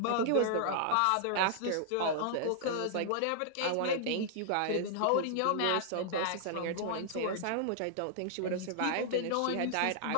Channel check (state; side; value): different; both; correlation -0.01